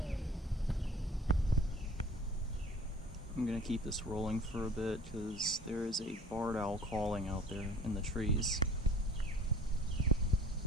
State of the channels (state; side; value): normal; both; correlation 0.48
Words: I'm gonna keep this rolling for a bit because there is a barred owl calling out there in the trees.